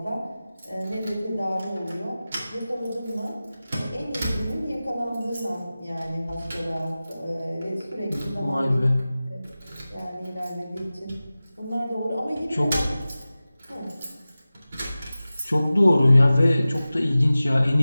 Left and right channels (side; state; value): both; inverted; correlation -0.96